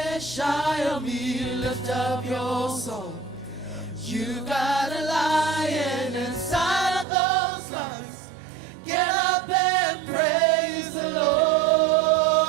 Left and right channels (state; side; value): drops out; left; at 7.1 s